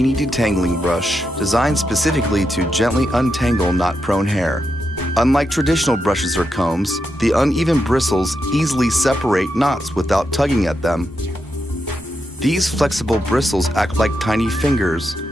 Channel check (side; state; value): both; normal; correlation 0.85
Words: Detangling Brush, designed specifically to gently untangle knot-prone hair. Unlike traditional brushes or combs, the uneven bristles easily separate knots without tugging at them. These flexible bristles act like tiny fingers,